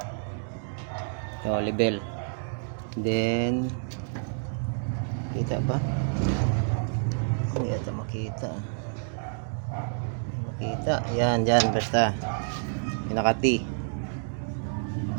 Ito, level. Then, kita ba? Hindi ito makita. Makita. Yan, dyan, basta. Pinaka-T.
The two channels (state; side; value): silent; left; digital silence